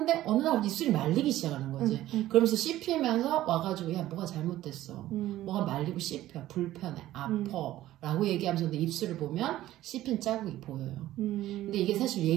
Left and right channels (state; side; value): quieter; left; 14.6 dB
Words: 어느 날 입술이 말리기 시작하는 거지. 그러면서 씹히면서 와가지고 야 뭐가 잘못됐어. 뭐가 말리고 씹혀. 불편해. 아파. 라고 얘기하면서 근데 입술을 보면 씹힌 자국이 보여요. 근데 이게 사실